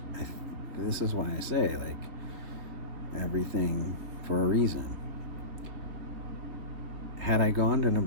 why I say, like, everything for a reason. Had I gone to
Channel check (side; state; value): left; late; 3.6 ms